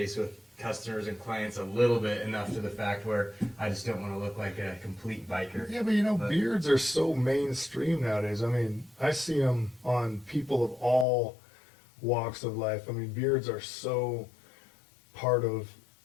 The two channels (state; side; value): drops out; right; at 11.1 s